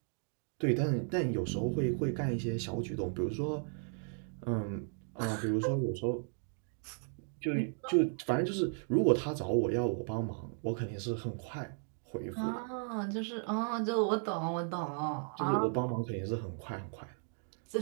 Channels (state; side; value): silent; left; 54 dB below the other